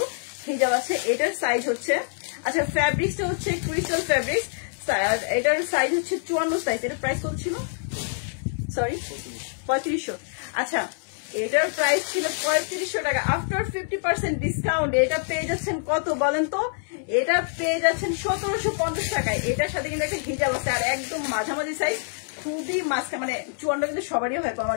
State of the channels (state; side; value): silent; right; 61 dB below the other